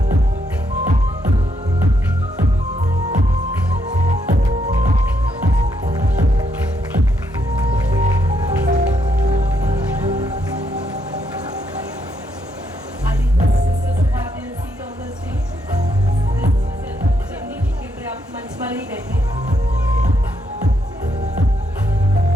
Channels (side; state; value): both; normal; correlation 0.77